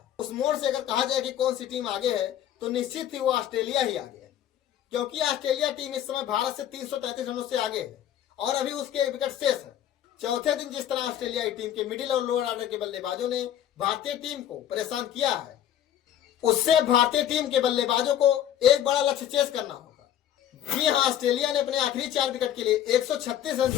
उस मोड़ से अगर कहा जाए कि कौन सी टीम आगे है तो निश्चित ही वो ऑस्ट्रेलिया ही आगे है, क्योंकि ऑस्ट्रेलिया टीम इस समय भारत से 333 रनों से आगे है और अभी उसके एक विकेट शेष है। चौथे दिन जिस तरह ऑस्ट्रेलियाई टीम के मिडिल और लोअर ऑर्डर के बल्लेबाजों ने भारतीय टीम को परेशान किया है, उससे भारतीय टीम के बल्लेबाजों को एक बड़ा लक्ष्य चेस करना होगा। जी हाँ, ऑस्ट्रेलिया ने अपने आखिरी 4 विकेट के लिए 136 रन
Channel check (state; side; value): quieter; right; 11.0 dB